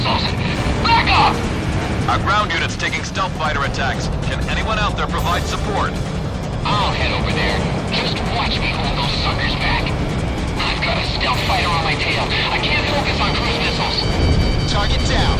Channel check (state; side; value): identical; both; correlation 1.00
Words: Back up! Our ground unit's taking stealth fighter attacks. Can anyone out there provide support? I'll head over there. Just watch me hold those suckers back. I've got a stealth fighter on my tail. I can't focus on cruise missiles. Target down.